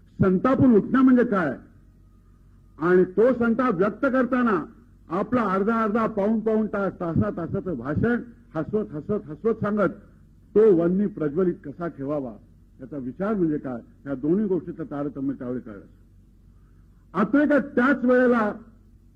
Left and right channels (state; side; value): identical; both; correlation 1.00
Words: संतापून उठणं म्हणजे काय, आणि तो संताप व्यक्त करताना आपला अर्धा पाऊण तास तासाचं भाषण हसवत सांगत तो वन्नी प्रज्वलित कसा ठेवावा याचा विचार म्हणजे काय, या दोन्ही गोष्टीचं तारतम्य त्यावेळी कळलं. अत्रे का त्याच वेळेला